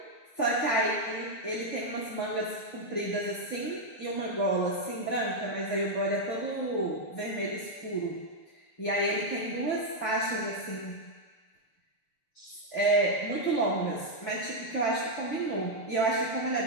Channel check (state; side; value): late; right; 6.8 ms